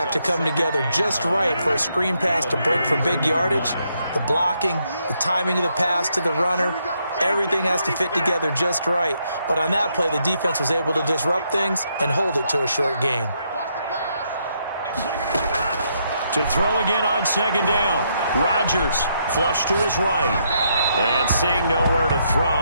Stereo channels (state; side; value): inverted; both; correlation -0.76